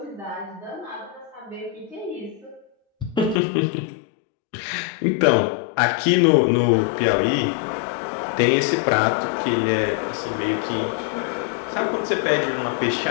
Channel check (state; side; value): drops out; right; at 3.4 s